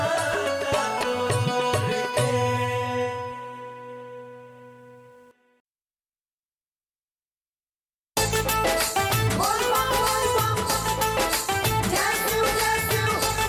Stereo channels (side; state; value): both; identical; correlation 1.00